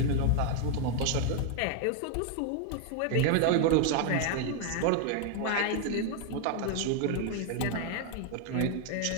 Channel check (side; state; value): both; different; correlation 0.00